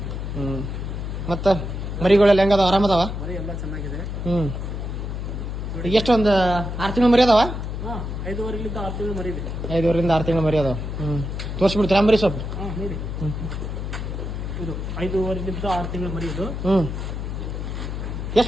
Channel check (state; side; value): noise; left; hum, 5 dB below the sound